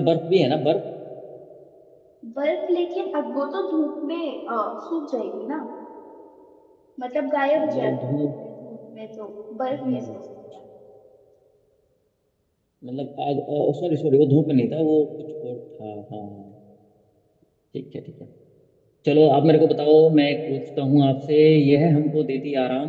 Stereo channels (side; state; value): both; identical; correlation 1.00